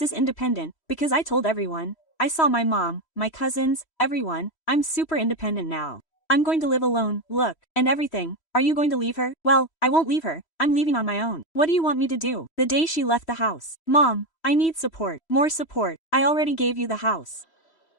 Independent, because I told everyone. I saw my mom, my cousins, everyone. I'm super independent now. I'm going to live alone, look, and everything. Are you going to leave her? Well, I won't leave her. I'm leaving on my own. What do you want me to do? The day she left the house. Mom, I need support. More support. I already gave you the house.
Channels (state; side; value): late; right; 3.1 ms